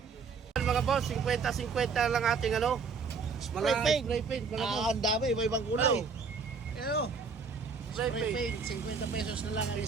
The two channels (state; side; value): quieter; left; 5.0 dB